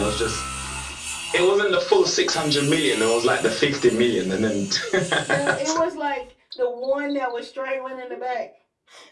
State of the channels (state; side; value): identical; both; correlation 1.00